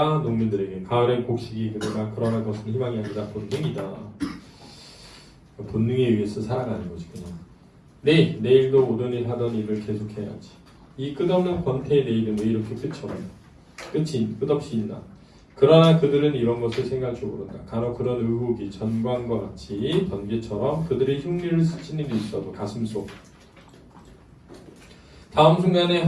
농민들에게 가을엔 곡식이 그러나 그것은 희망이 아니라 본능이다. 본능에 의해서 살아가는 거지 그냥. 내일도 오던 일 하던 일을 계속해야지. 이 끝없는 권태의 내일은 왜 이렇게 끝없이 있나? 그러나 그들은 이런 것을 생각할 줄 모른다. 간혹 그런 의혹이 전광과 같이 번개처럼 그들의 흉리를 스치는 일이 있어도 가슴속 다음 순간에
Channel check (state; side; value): identical; both; correlation 1.00